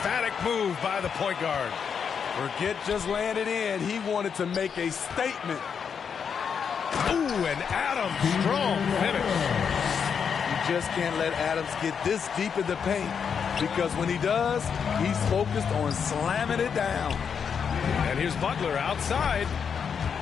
move by the point guard. Forget just landed in. He wanted to make a statement. Ooh, and Adams, strong finish. You just can't let Adams get this deep in the paint because when he does, he's focused on slamming it down. And here's Butler outside.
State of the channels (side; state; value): right; quieter; 6.8 dB